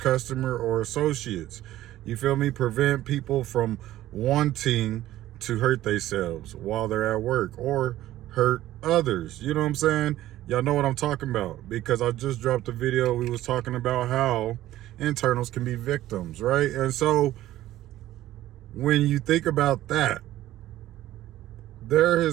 or associates. You feel me? Prevent people from wanting to hurt themselves while they're at work or hurt others. You know what I'm saying? Y'all know what I'm talking about, because I just dropped a video. We was talking about how internals can be victims, right? And so when you think about that, there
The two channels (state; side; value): quieter; left; 14.5 dB